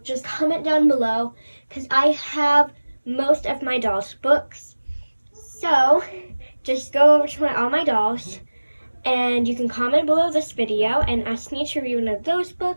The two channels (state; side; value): inverted; both; correlation -1.00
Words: Just comment down below, because I have most of my dolls' books. So just go over to all my dolls, and you can comment below this video and ask me to read one of those